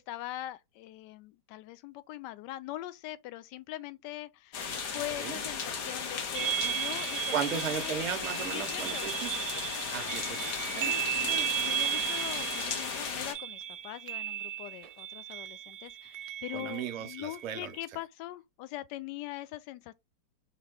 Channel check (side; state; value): right; late; 4.9 ms